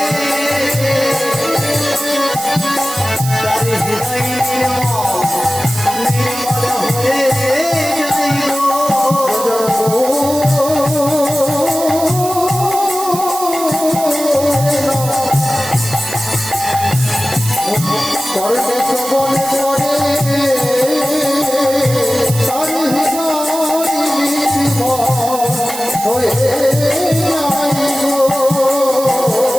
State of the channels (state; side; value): noise; right; hiss, 9 dB below the sound